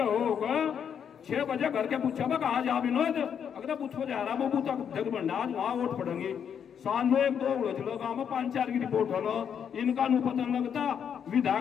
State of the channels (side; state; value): right; quieter; 8.0 dB